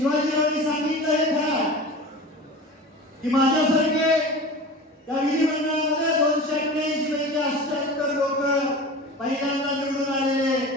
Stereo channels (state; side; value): normal; both; correlation 0.34